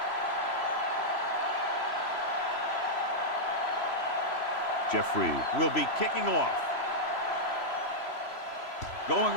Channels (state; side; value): late; right; 3.0 ms